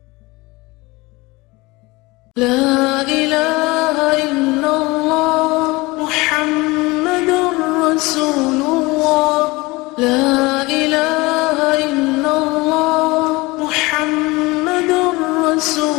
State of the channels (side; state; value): right; quieter; 22.9 dB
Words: لا إله إلا الله محمد رسول الله. لا إله إلا الله محمد